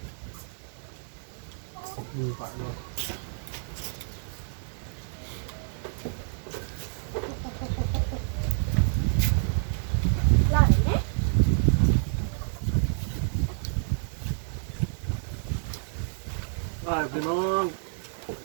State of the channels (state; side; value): silent; left; 56 dB below the other